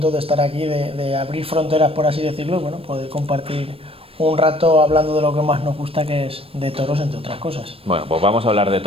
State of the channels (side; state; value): left; late; 0.28 ms